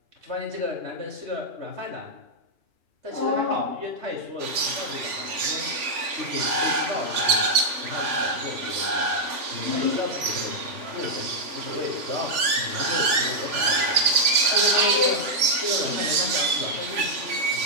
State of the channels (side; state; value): left; late; 3.4 ms